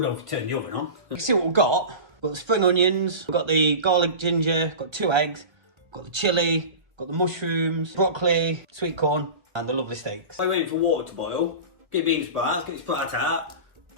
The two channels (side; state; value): left; late; 1.3 ms